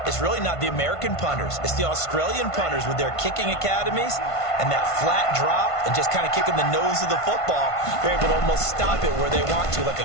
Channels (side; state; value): right; late; 1.5 ms